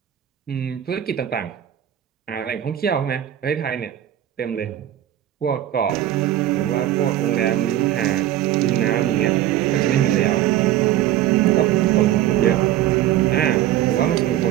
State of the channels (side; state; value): left; quieter; 12.4 dB